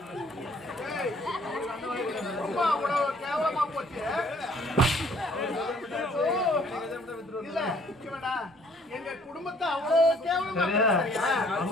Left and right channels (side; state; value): both; normal; correlation 0.60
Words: கேவலமா போச்சு. இல்ல எங்க குடும்பத்தை அவ்வளவு கேவலமா